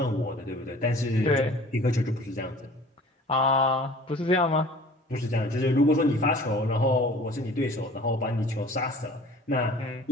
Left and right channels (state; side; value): normal; both; correlation 0.47